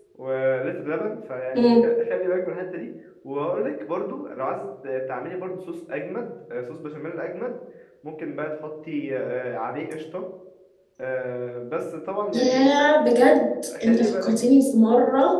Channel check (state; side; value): identical; both; correlation 1.00